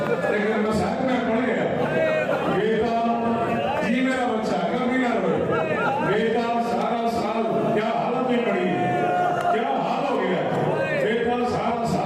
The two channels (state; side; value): identical; both; correlation 1.00